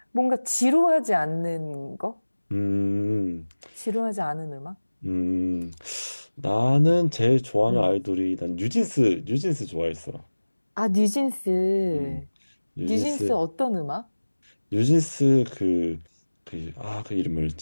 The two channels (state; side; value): inverted; both; correlation -1.00